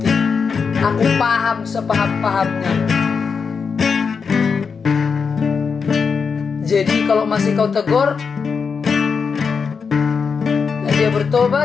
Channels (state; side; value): quieter; right; 5.6 dB